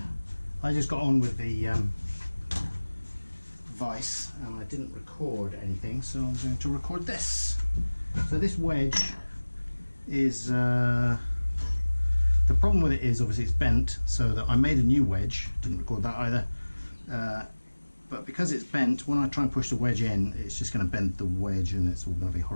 I just got on with the vice and I didn't record anything, so I'm going to record this. So this wedge is, the problem with it is obviously it's bent, so that I made a new wedge, didn't record that either, but because it's bent, when I try and push the wedge in, it's just going to bend the wedge and it's all going to be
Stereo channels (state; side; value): inverted; both; correlation -1.00